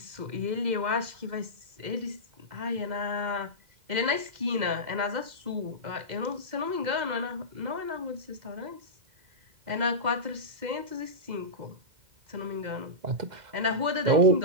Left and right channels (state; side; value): late; left; 2.0 ms